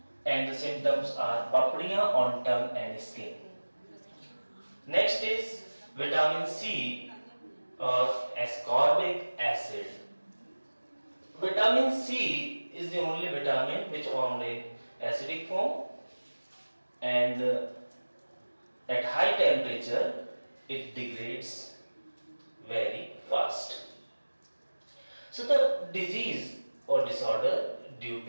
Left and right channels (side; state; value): both; inverted; correlation -1.00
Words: and the symptoms are papadiya on tongue and skin. Next is vitamin C or ascorbic acid. Vitamin C is the only vitamin which formed in acidic form, and at high temperature it degrades very fast. So the disease or disorder due